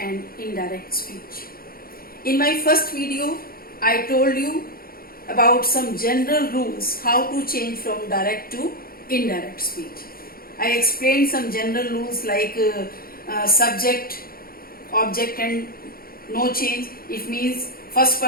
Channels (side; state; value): right; late; 0.43 ms